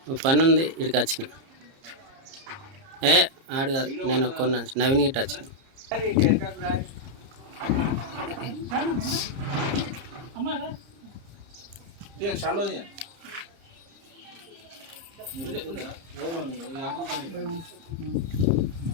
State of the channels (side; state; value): left; late; 30 ms